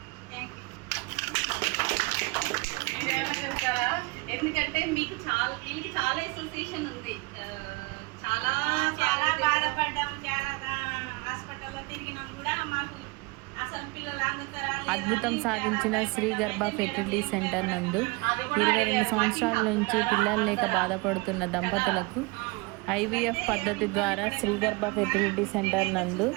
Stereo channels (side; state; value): left; quieter; 26.1 dB